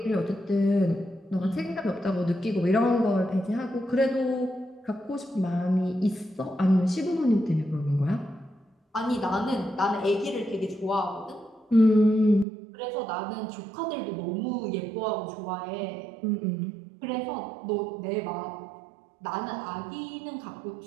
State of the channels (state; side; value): drops out; left; at 12.5 s